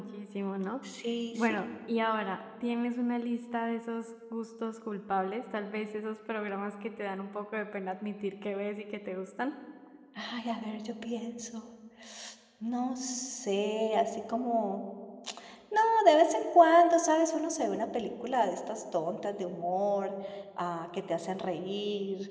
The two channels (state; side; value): identical; both; correlation 1.00